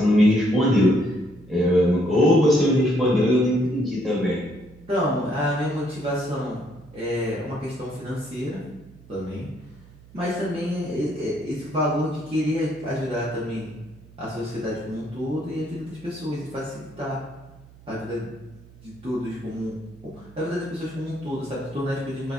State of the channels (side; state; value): right; noise; hum, 23 dB below the sound